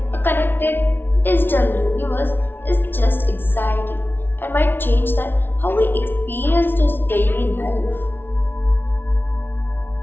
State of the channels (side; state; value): right; late; 0.10 ms